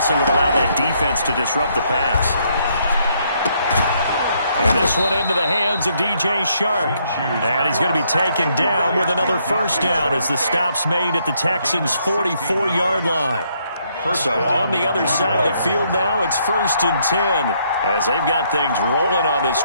what allowed that defense to disrupt the pass. And this one into the hands of DJ Shark. And he's going to be taken down with another first down as the stop's made at the Texans' 44-yard line. So on the other side of the field now, it's 1st and 10 as they've got things rolling on this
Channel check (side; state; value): both; inverted; correlation -0.71